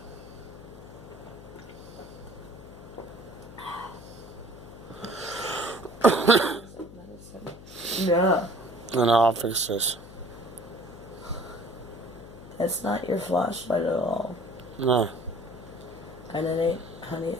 Yeah. No, I'll fix this. That's not your flashlight at all. No. And it ain't honey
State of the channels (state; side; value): noise; left; hum, 16 dB below the sound